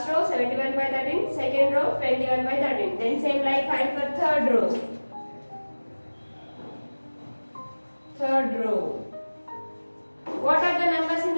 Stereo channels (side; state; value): both; inverted; correlation -1.00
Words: row, 71 by 13. Second row, 21 by 13. Then same like find for third row. Third row. What are the numbers in